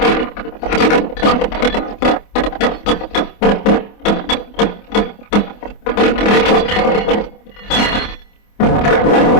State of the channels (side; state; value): right; late; 24 ms